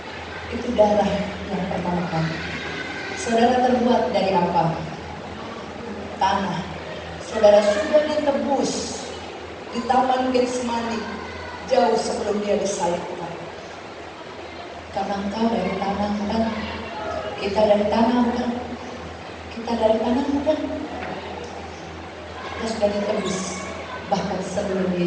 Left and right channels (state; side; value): identical; both; correlation 1.00